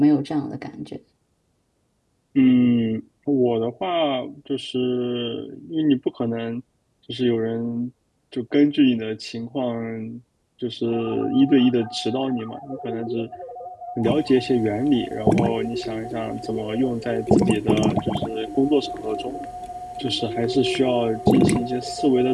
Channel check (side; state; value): both; identical; correlation 1.00